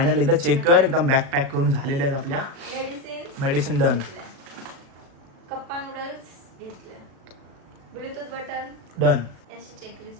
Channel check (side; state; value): left; late; 36 ms